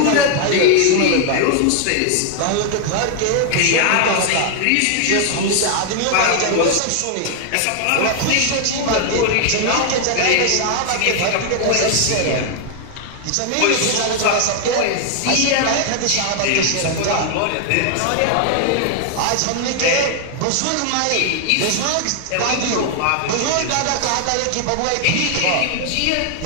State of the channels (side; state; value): both; different; correlation 0.00